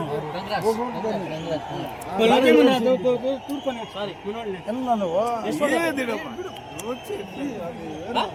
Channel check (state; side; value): identical; both; correlation 1.00